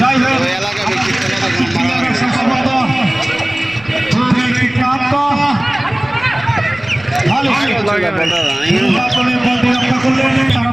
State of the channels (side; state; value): right; noise; rumble, 23 dB below the sound